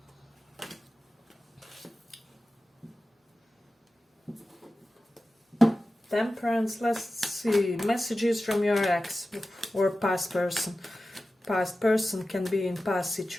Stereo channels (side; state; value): both; normal; correlation 0.94